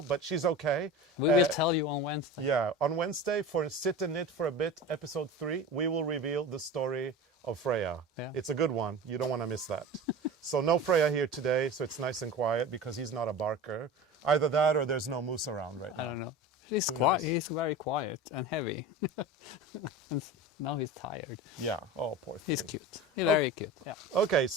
but she's okay. We will tell you on Wednesday. Yeah, on Wednesday for Sit and Knit for a Bit, episode 3, we will reveal the story of Freya. Yeah. It's a good one. You don't want to miss that. So no Freya here today, so it's nice and quiet because he's not a barker. Either that or there's no moose around right now. I don't know. He's quiet. He's very quiet and heavy. And now he's tired. Yeah. Oh, poor thing. He's cute. He's very cute. Yeah. Okay,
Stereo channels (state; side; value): normal; both; correlation 0.32